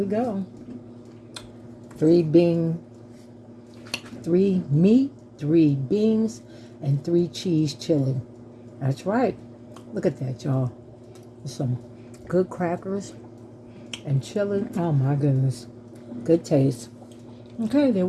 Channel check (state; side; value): identical; both; correlation 1.00